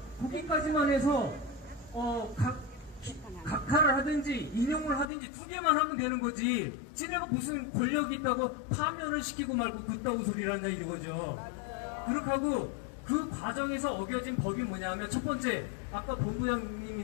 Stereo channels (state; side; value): drops out; right; at 5.1 s